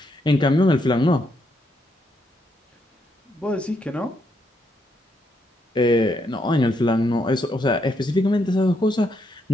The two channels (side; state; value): both; normal; correlation 0.77